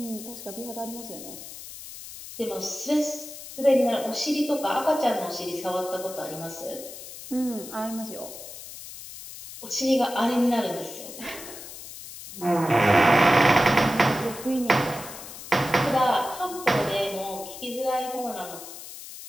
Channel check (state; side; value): noise; left; hiss, 13 dB below the sound